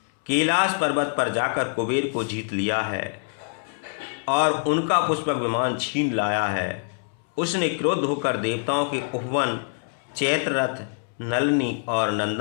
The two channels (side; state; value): right; silent; 62 dB below the other